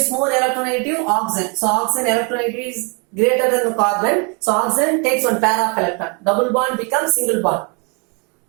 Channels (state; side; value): quieter; left; 34.4 dB